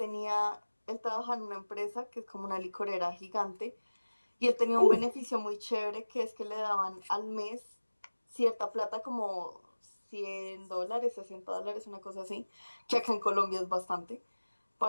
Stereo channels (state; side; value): inverted; both; correlation -1.00